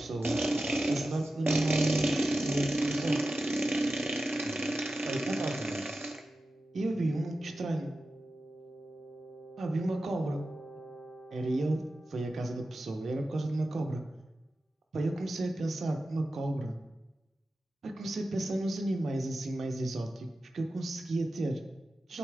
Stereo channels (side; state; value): both; normal; correlation 0.92